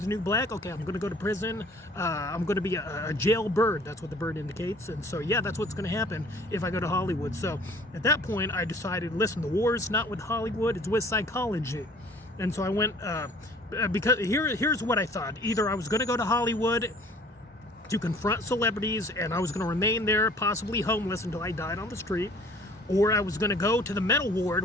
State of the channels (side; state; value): both; normal; correlation 0.53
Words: new black. Okay, I'm going to go to prison. I'm going to be a jailbird. That's what the bird indicates. And so, yeah, that's what's going to happen if I go to Hollywood. So at that point, I decided, listen, the war's not with Hollywood, it's with psychology. And so I went, because here's what I thought. Either I was going to go to Hollywood to confront celebrities, and I was going to remain there, possibly homeless until I died on the street, or I was going to go to the mental